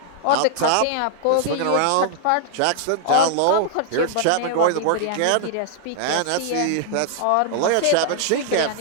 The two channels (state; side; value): different; both; correlation -0.01